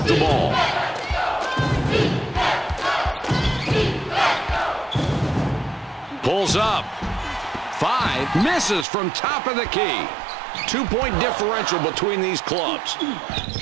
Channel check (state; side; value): drops out; left; at 8.8 s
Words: the ball. Pulls up. 5 misses from top of the key. 2-point differential between these clubs.